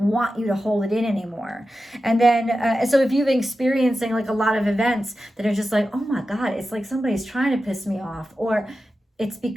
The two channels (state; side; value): normal; both; correlation 0.92